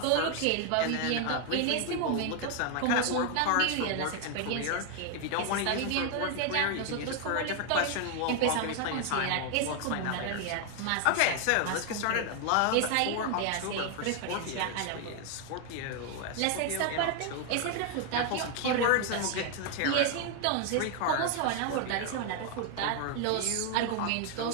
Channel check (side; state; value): both; different; correlation 0.01